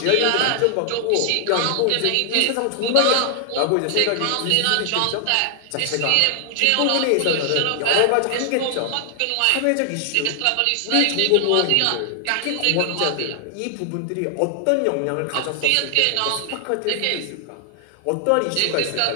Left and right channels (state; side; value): different; both; correlation 0.00